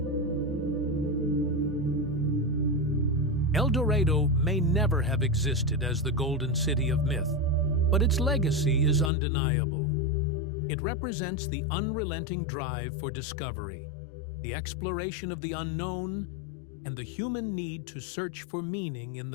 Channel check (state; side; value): drops out; right; at 9.1 s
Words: El Dorado may never have existed as the golden city of myth, but its legacy is undeniable. It represents the unrelenting drive for discovery, the exploration of the unknown, and the human need to search for meaning in